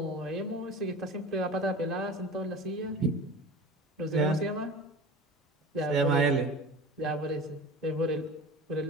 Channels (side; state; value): both; normal; correlation 0.36